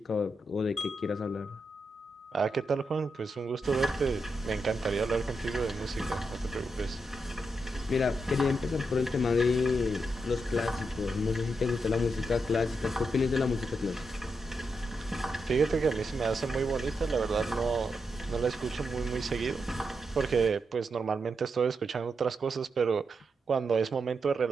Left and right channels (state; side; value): normal; both; correlation 0.84